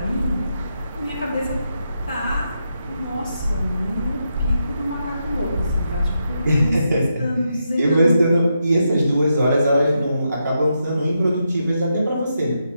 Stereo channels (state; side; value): inverted; both; correlation -0.83